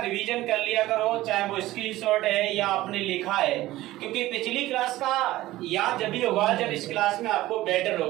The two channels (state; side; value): quieter; left; 16.6 dB